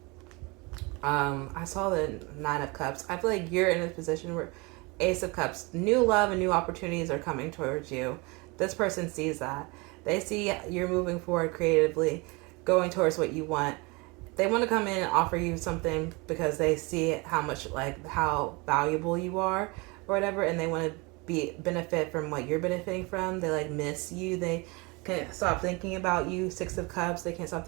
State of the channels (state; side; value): quieter; left; 26.9 dB